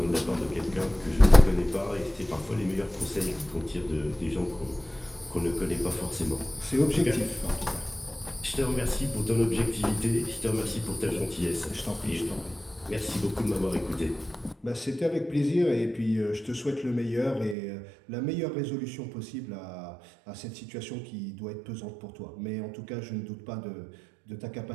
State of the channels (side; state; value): left; drops out; at 17.6 s